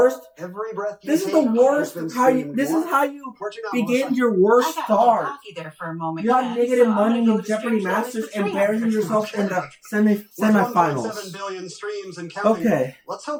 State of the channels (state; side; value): identical; both; correlation 1.00